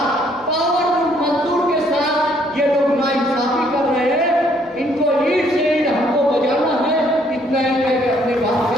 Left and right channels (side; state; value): both; normal; correlation 0.66